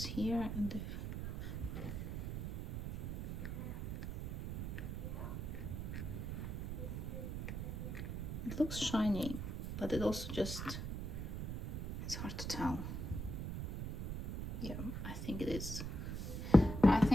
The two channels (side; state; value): right; noise; rumble, 4 dB below the sound